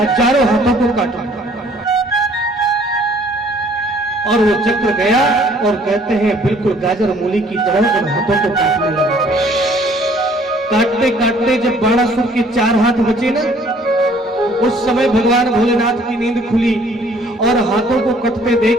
हाथों को काटो। और वो चक्र गया और कहते हैं बिल्कुल गाजर मूली की तरह उन हाथों को काटने लगा। काटते काटते जब बाणासुर के 4 हाथ बचे ना, उस समय भगवान भोलेनाथ की नींद खुली और हाथों को कटते देख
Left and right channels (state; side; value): normal; both; correlation 0.59